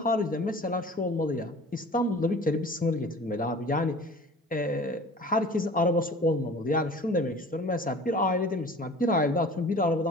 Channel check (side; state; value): both; normal; correlation 0.44